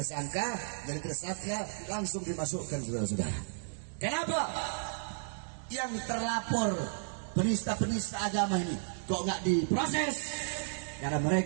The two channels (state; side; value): silent; left; digital silence